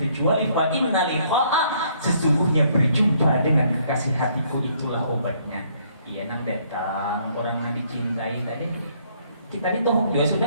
fa inna liqa'a, sesungguhnya berjumpa dengan kekasih hatiku itulah obatnya. Iya nang datang orang yang dicintai tadi. Kita ini toh juga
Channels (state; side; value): inverted; both; correlation -0.66